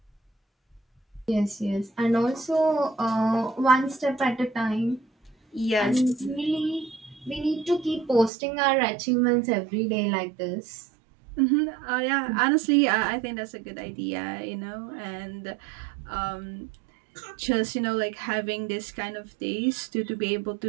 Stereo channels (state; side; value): drops out; left; at 8.3 s